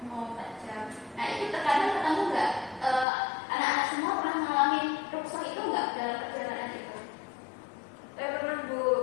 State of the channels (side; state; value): right; drops out; at 3.1 s